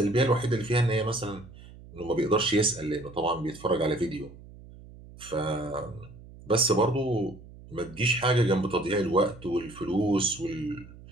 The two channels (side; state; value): right; noise; hum, 19 dB below the sound